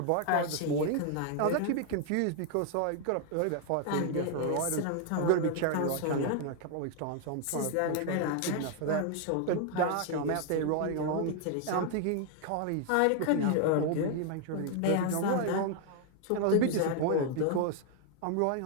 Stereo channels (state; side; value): different; both; correlation 0.00